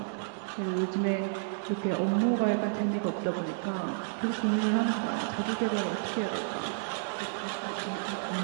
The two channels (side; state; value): left; silent; digital silence